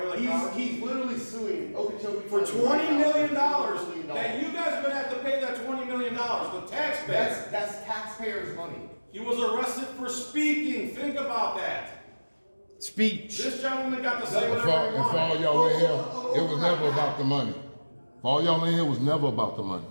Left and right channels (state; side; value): inverted; both; correlation -1.00